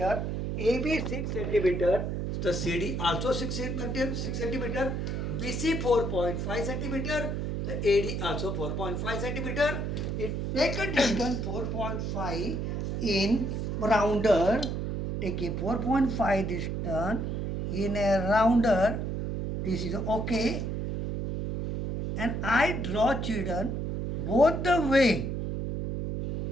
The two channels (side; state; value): right; noise; hum, 2 dB below the sound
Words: AB 6 centimeter, the CD also 6 centimeter, BC 4.5 centimeter, the AD also 4.5 centimeter. It take a distance 4.5 in rounder, take a 4.5 distance in a rounder. This is okay, and I draw children both the way,